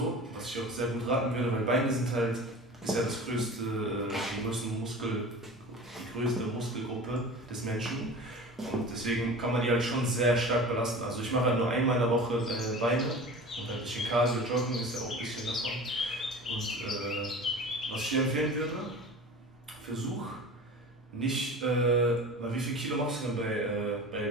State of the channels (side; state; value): both; normal; correlation 0.37